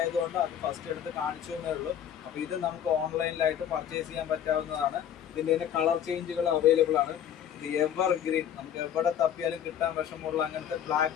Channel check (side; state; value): right; quieter; 9.5 dB